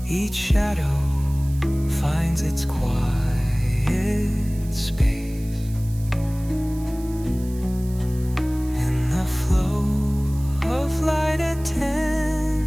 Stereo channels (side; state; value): right; noise; hiss, 21 dB below the sound